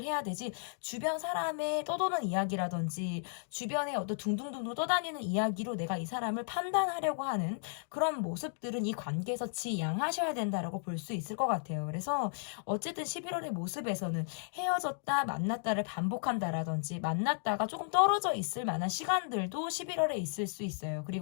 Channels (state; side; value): silent; right; digital silence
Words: 해야 되지 주변 사람의 떠도는 이야기라든지 주변에 어떤 둥둥둥둥 떠다니는 이야기로 내가 이 사람을 판단하려고 하는 그런 모습들은 이 관계에서 지양하셔야 된다라고 볼 수 있을 것 같아요. 그래서 어쨌든 11월의 모습에서는 헤어졌다 만났다를 반복한다라든지 만났다가 조금 떨어져 있을 만한 시간들도 11월에 있을 수 있어요.